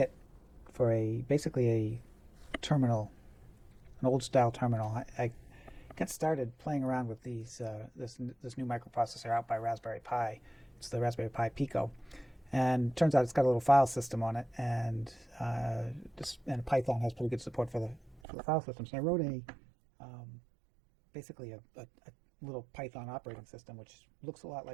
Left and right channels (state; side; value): drops out; left; at 18.2 s